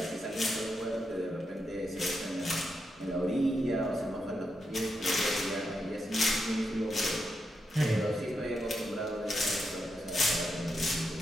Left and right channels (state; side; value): normal; both; correlation 0.84